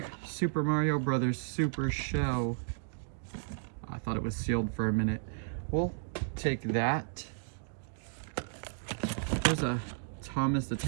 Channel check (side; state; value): left; silent; digital silence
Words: Super Mario Brothers Super Show. I thought it was sealed for a minute. We'll take that. There's a Thomas the